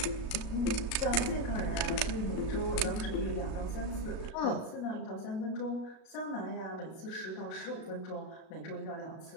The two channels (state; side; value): late; right; 37 ms